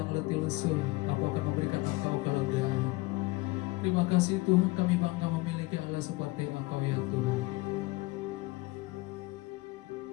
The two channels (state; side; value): quieter; right; 22.3 dB